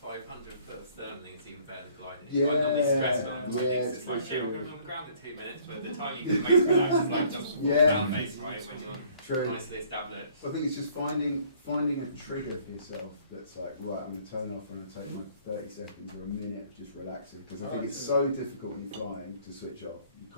first thermaling is even better than gliding. Yeah, I'm normally stressed when I'm gliding. It's like, shit, we're going to be on the ground in 2 minutes, but the time you can make relax is like just down face, right, when you're nicely established. I think it's just finding a trigger for yourself that's like, right, I'm going to turn off, I'm going to take my 30 seconds or a minute of just relaxing. Because I think it's so difficult when you're flying to switch off. You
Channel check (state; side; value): inverted; both; correlation -0.58